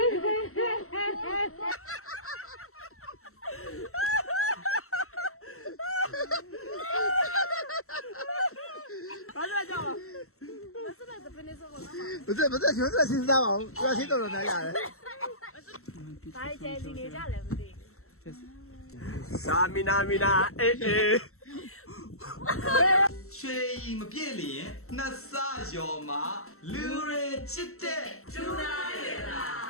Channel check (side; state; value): right; late; 0.63 ms